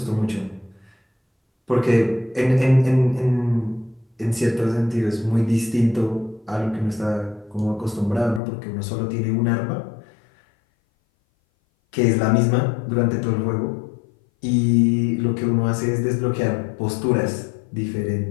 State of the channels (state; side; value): drops out; right; at 8.4 s